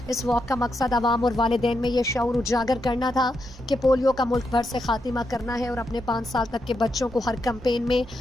اس واک کا مقصد عوام اور والدین میں یہ شعور اجاگر کرنا تھا کہ پولیو کا ملک بھر سے خاتمہ کرنا ہے اور اپنے 5 سال تک کے بچوں کو ہر کمپین میں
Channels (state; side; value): normal; both; correlation 0.83